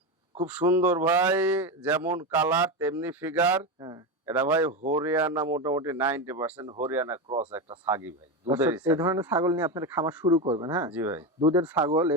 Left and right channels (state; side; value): normal; both; correlation 0.15